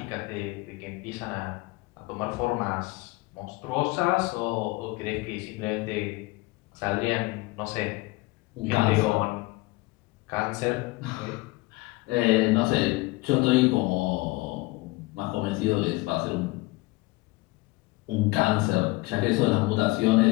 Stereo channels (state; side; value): quieter; right; 22.1 dB